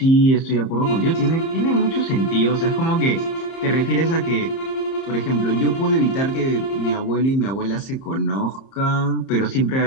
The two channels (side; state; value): right; late; 30 ms